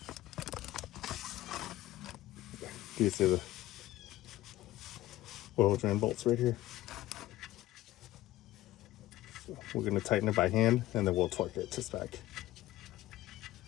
Do you see the oil drain bolts right here? So we're going to tighten it by hand and then we'll torque it to spec.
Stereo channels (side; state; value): right; quieter; 15.7 dB